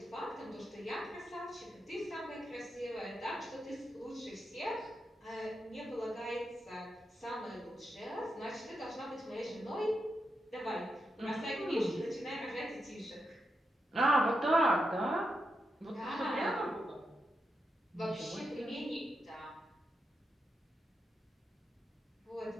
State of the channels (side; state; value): both; normal; correlation 0.85